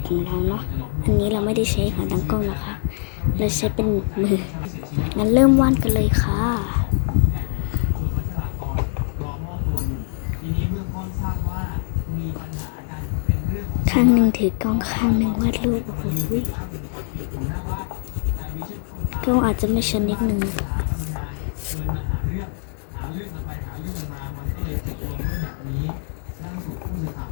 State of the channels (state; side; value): silent; right; digital silence